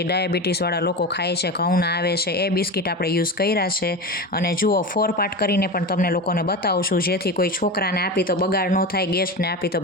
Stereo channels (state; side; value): normal; both; correlation 0.25